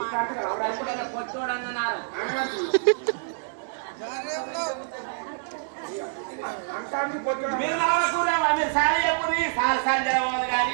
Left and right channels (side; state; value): left; silent; digital silence